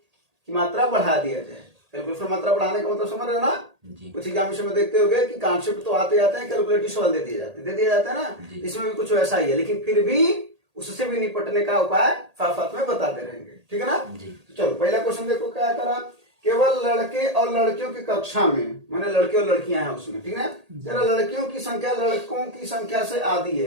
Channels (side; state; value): left; late; 1.8 ms